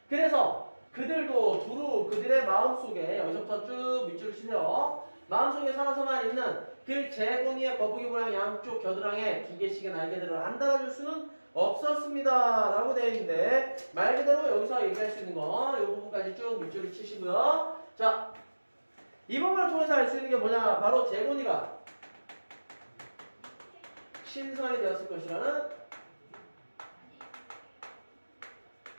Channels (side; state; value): both; inverted; correlation -1.00